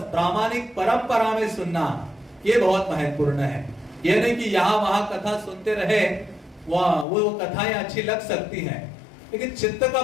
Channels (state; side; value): drops out; right; at 7.1 s